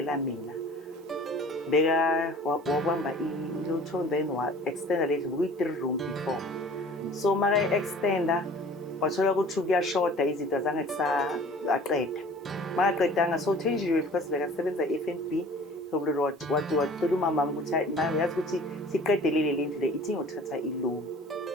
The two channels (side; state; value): both; normal; correlation 0.47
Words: mina. Beka wabamba ilotho then wa-extenda le ndlu kuyi-3 room before. So maka extenda wathola ukuthi kuyashoda izinto zange aqeda. Makaqedanga so Thenjiwe because bekasebenza e-FNB wathi wacela umama ukuthi mama yazi ukuthi siqedelele le ndlu le ithi ngothatha i-loan